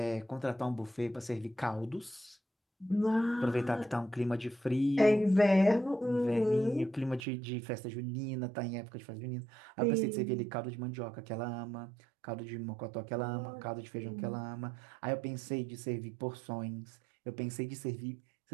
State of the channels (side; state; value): left; drops out; at 7.2 s